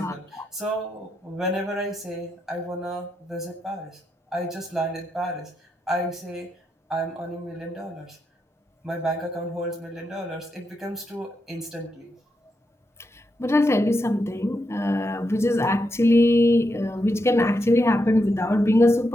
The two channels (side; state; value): both; normal; correlation 0.83